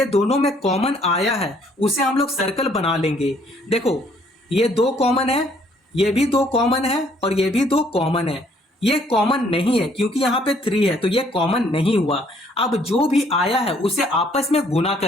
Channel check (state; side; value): normal; both; correlation 0.64